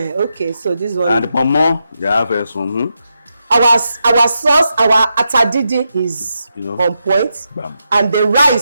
Okay, so this one. And the pomo, they have some. Our sauce, our atadidi is on point. Bam. And the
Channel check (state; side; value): inverted; both; correlation -0.86